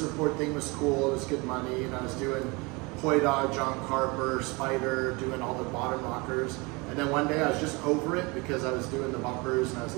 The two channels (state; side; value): quieter; left; 26.7 dB